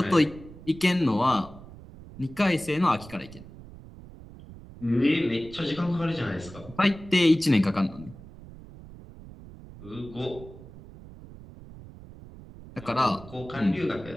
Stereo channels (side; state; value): right; noise; rumble, 17 dB below the sound